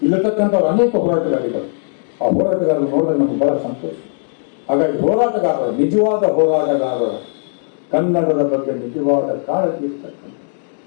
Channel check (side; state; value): right; silent; digital silence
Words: ಇಲ್ಲತಕ್ಕಂಥವ್ರು ಅನೇಕ ಹೋರಾಟಗಾರಿಗಳು, ಆ ಹೋರಾಟಗಾರರು ನೋಡಿದಾಗ ನಮ್ಗೆ ಬಹಳ ಸಂತೋಷ. ಹಾಗಾಗಿ ಹೋರಾಟಗಾರರು, ನಿಜವಾದ ಹೋರಾಟಗಾರರು, ಕನ್ನಡದ ಬಗ್ಗೆ ನಿಜವಾದ ಕಾಳಜಿ ಇರ್ತಕ್ಕಂಥ,